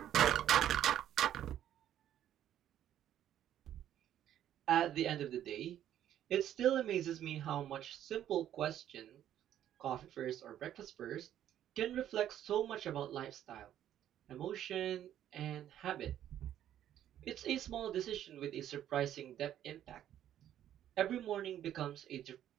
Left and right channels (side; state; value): left; quieter; 11.2 dB